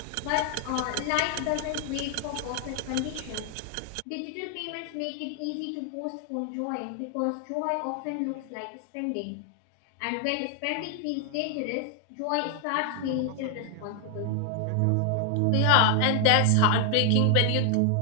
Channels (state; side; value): different; both; correlation 0.00